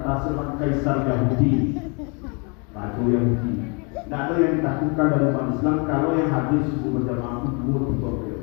seorang kaisar Yahudi, Raja Yahudi. Tidak ada yang ditakutkan dari umat Islam kalau yang hadir subuh berjamaah itu 2, 3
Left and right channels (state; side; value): quieter; right; 33.9 dB